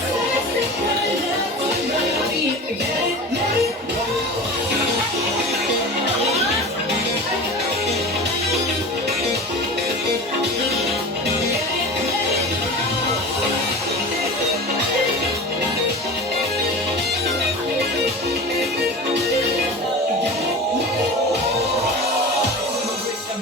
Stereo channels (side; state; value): both; normal; correlation 0.32